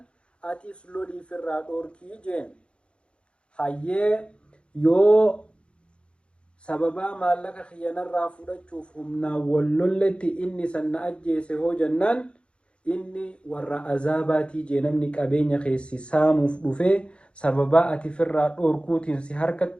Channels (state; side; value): late; right; 0.058 ms